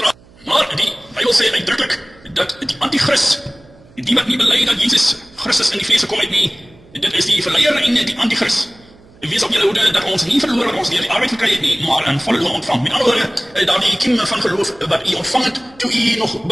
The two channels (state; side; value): noise; right; hum, 26 dB below the sound